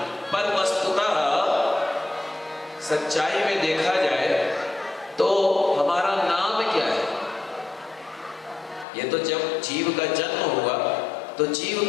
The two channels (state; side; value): drops out; right; at 8.8 s